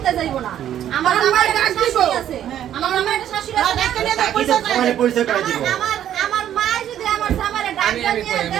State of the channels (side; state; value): left; quieter; 10.9 dB